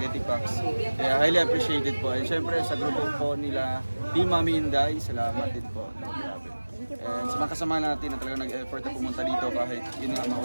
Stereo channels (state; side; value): inverted; both; correlation -1.00